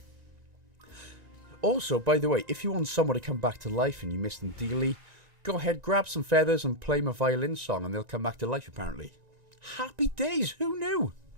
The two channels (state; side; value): late; left; 1.9 ms